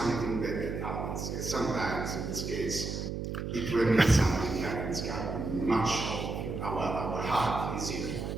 that happens. Sometimes, in this case, it remains something that is much of our heart is here.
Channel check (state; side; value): noise; right; hum, 4 dB below the sound